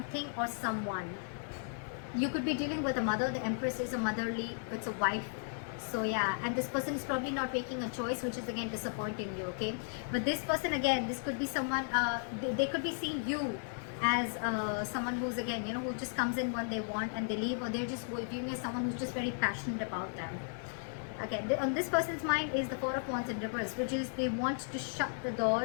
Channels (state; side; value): silent; right; 54 dB below the other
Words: or someone. You could be dealing with a mother. The Empress is a motherly, it's a wife. So yeah, and this person is probably not making a choice, which is again disappointing you, okay? But this person, again, this could be someone, they could be seeing you as someone who's, again, you know, who just comes in when they want and they leave, or they're just viewing as someone who's just very passionate about them. Okay, on this person's mind is the Four of Wands in reverse, which is they want to shut the